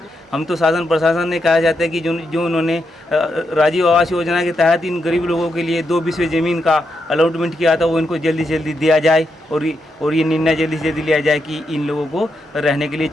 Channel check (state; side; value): normal; both; correlation 0.83